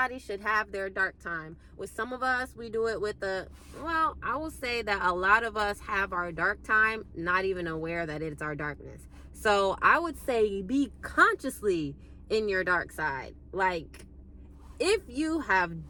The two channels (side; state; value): both; identical; correlation 1.00